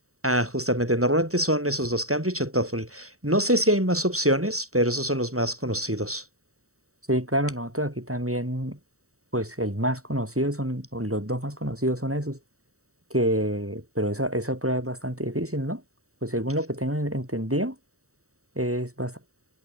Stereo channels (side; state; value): left; late; 0.64 ms